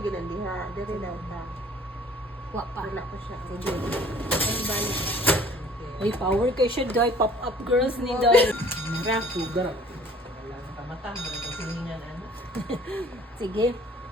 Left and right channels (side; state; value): both; normal; correlation 0.52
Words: ang diha. Dari lang ta. Wa pa. Wala ko siya. Sige. Ay, balik. Uy, power kay siya, Day. Pop-up girls ni Day. Mara, sugar. Mata, kasi hinan ano. Sige.